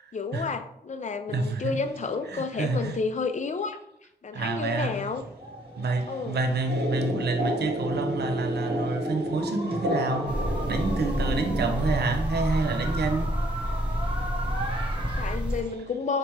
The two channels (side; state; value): both; normal; correlation 0.63